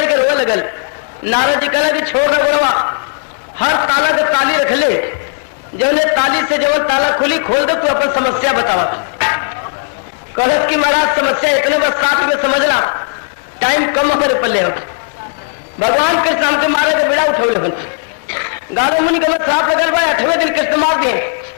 के रोने लगल। नारद जी कहला कि छोड़ ना गुणवा, हर ताला के ताली रख ले, जो ने ताली से जो ताला खुली खोल दो, तू अपन समस्या बतावा। कहलत कि महाराज समस्या इतने बस 60 में समझना, टाइम कम हमारे पल्ले हो। भगवान कृष्ण हमके मारे के बेड़ा उठौले बन गारो मुनि के श्राप लगल बा, 8वें दिन कृष्ण मार दिए,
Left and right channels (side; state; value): right; silent; digital silence